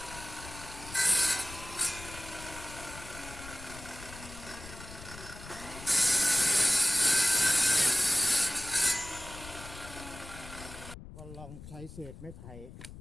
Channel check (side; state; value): left; noise; rumble, 15 dB below the sound